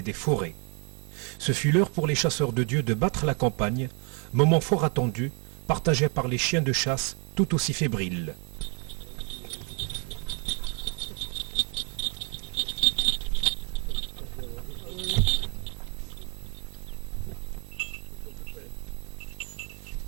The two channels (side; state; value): left; quieter; 33.6 dB